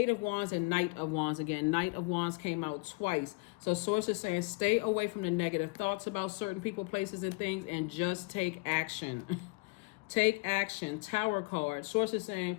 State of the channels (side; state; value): right; quieter; 28.3 dB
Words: of Wands, and Knight of Wands. Again, Knight of Wands came out twice. So Source is saying stay away from the negative thoughts about certain people, places, and things, and just take action. Take action. Tower card. Source is